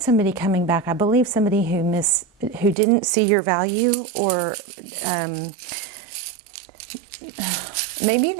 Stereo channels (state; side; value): drops out; left; at 2.8 s